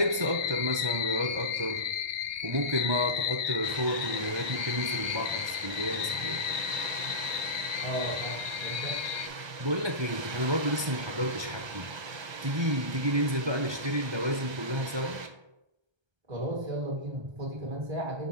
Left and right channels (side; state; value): left; late; 1.3 ms